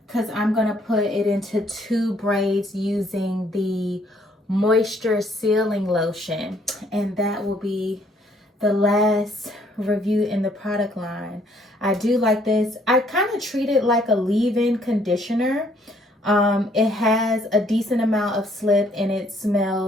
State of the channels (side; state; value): both; normal; correlation 0.65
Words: because I'm gonna put it into 2 braids using the moisture sealing lotion, and that will be the last review in the product line. I do like this. I kind of treat it like a leave-in conditioner. It has a decent amount of slip and it